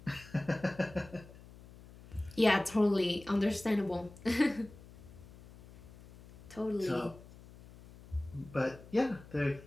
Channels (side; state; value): left; noise; hum, 20 dB below the sound